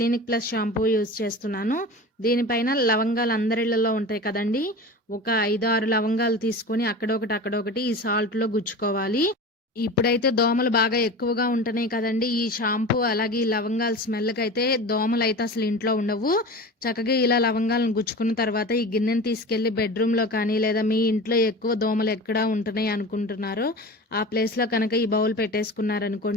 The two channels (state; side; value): normal; both; correlation 0.33